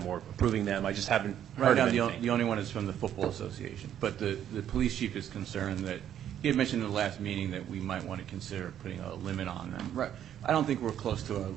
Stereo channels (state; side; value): quieter; left; 10.3 dB